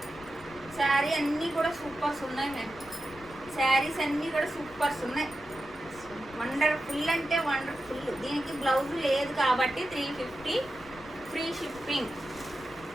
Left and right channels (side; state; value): left; noise; rumble, 21 dB below the sound